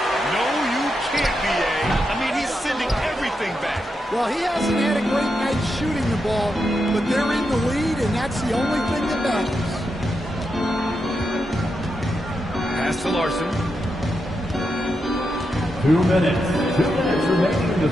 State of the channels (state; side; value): normal; both; correlation 0.85